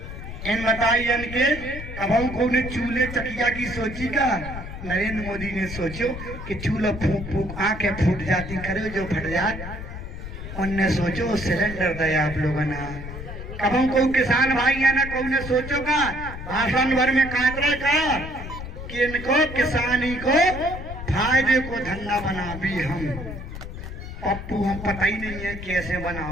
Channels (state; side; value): noise; left; rumble, 9 dB below the sound